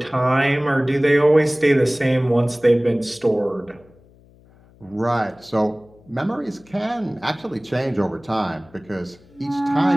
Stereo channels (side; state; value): left; noise; hum, 28 dB below the sound